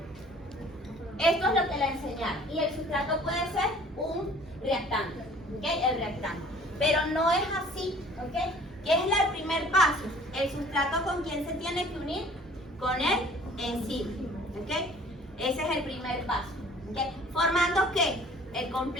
Esto es lo que le enseñaron. Y el sustrato puede ser un reactante. ¿Ok? El reactante. Pero no es así. ¿Ok? ¿Qué es el primer paso? El sustrato con quién se tiene que unir? Con el enzima. ¿Ok? Ese es el primer paso. ¿Ok? Formando ¿qué? El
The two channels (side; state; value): both; normal; correlation 0.51